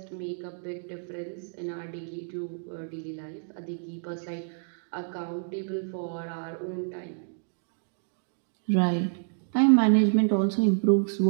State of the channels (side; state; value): left; silent; digital silence